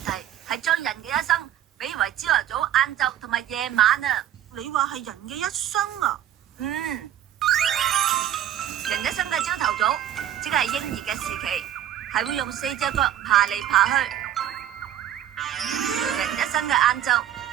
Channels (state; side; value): quieter; left; 11.3 dB